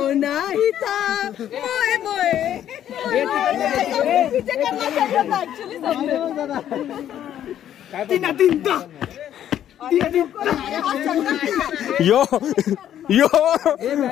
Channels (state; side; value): quieter; right; 10.8 dB